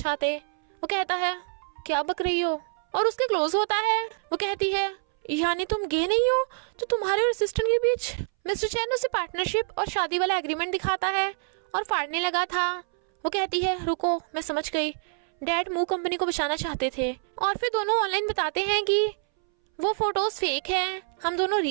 वो कहता है क्या बक रही हो, और उसके क्लोज होता है। वो कहती है यानी तुम गे नहीं हो, तो तुम्हारे और असिस्टेंट के बीच। मिस्टर चैन उसे पार्टनरशिप और शादी वाला एग्रीमेंट दिखाता है और फाड़ने लगा था। वो कहती है रुको, मैं समझ गई, डैड मू कंपनी को बचाना चाहते थे। और फिर दोनों ऑनलाइन बताते हैं कि वो फोटोज फेक हैं, हम दोनों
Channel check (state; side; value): silent; left; 61 dB below the other